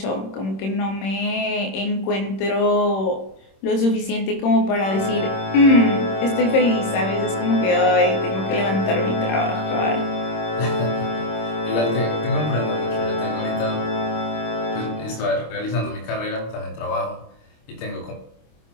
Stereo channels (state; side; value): late; right; 26 ms